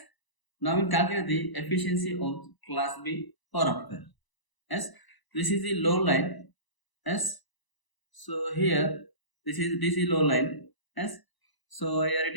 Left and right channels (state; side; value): late; right; 1.0 ms